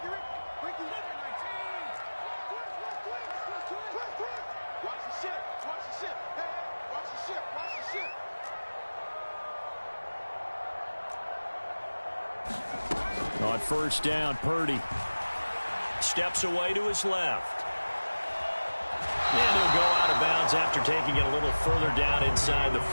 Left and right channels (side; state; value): both; inverted; correlation -1.00